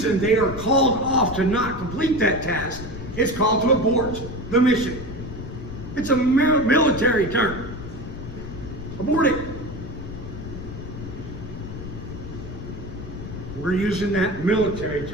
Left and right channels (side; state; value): left; noise; rumble, 9 dB below the sound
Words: they are called off to not complete that task. It's called to abort the mission. It's a military term. Abort it. We're using that military